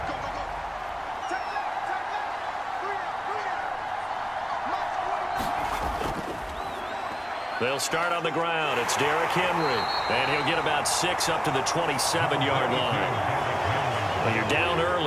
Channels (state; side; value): identical; both; correlation 1.00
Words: They'll start on the ground. It's Derrick Henry. And he'll get about 6 up to the 27-yard line. When you're down